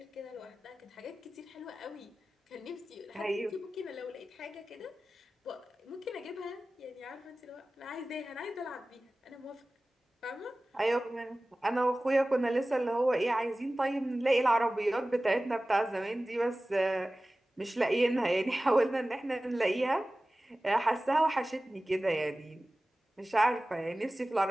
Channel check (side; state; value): both; normal; correlation 0.97